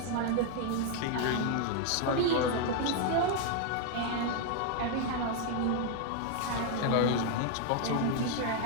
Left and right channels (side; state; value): both; different; correlation 0.00